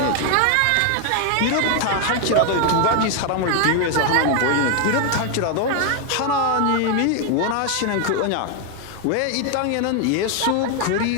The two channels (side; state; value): both; different; correlation 0.01